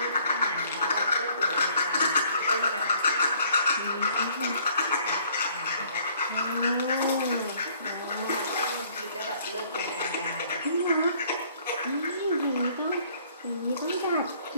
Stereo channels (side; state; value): both; inverted; correlation -0.61